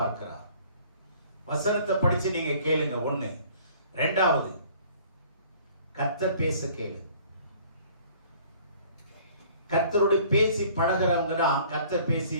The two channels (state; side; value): inverted; both; correlation -0.54